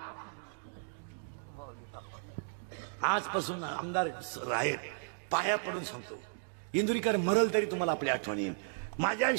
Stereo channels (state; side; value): silent; left; digital silence